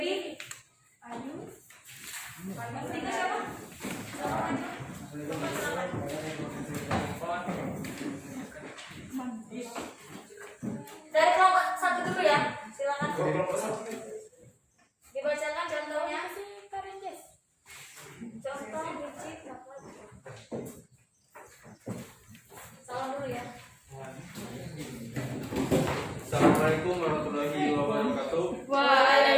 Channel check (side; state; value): both; identical; correlation 1.00